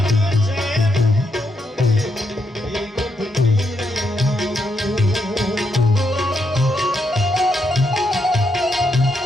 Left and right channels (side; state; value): both; normal; correlation 0.80